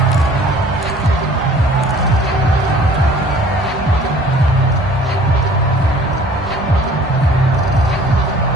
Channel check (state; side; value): normal; both; correlation 0.51